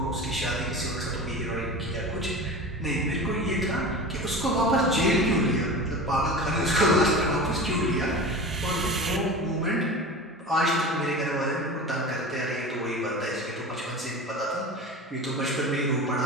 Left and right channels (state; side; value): normal; both; correlation 0.32